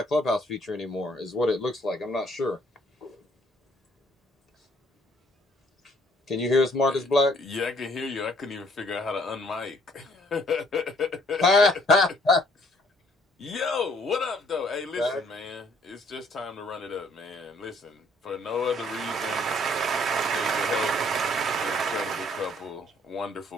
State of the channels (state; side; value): normal; both; correlation 0.62